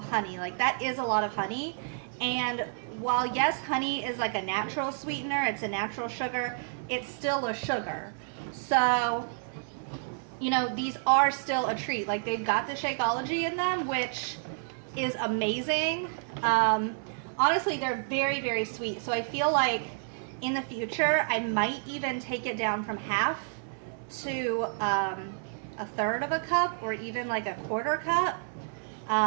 honey. Like, that is a lot of honey. And while, yes, honey is like a natural sweetener, it's a natural sugar, it's still a sugar. So, you know, these are still a treat. Like, they've got the Shakeology in them, which is amazing. Honestly, they're very, very sweet. So I feel like in the future, I might even take it down from half to a third of a cup or even like a quarter cup.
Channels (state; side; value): silent; left; 58 dB below the other